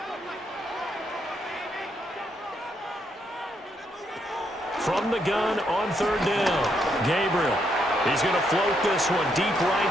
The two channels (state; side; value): normal; both; correlation 0.76